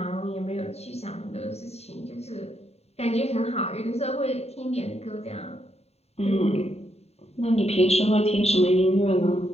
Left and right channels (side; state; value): right; late; 0.30 ms